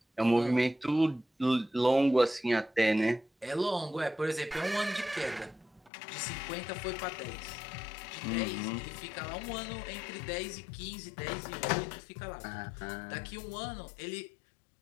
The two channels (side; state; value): right; drops out; at 5.9 s